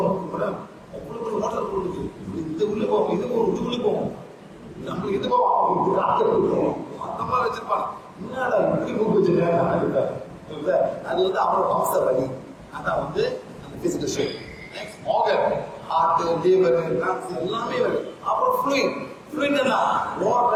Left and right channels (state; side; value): identical; both; correlation 1.00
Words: இந்த உள்ள போவோம், இது உள்ள போவோம், நம்மளுக்கு இது போவோம், அந்த மாதிரி வச்சிருப்பாங்க. என்னடா இப்படி மூக்கு வச்சிருக்காங்க, அது வந்து அவரோட வம்ச வழி. அதான் வந்து அந்த physical shape. Next organ, heart, liver, lungs எல்லாமே வருது. அப்புறம் ஃப்ளூயிட். ஃப்ளூயிட் என்ன? ஓடுற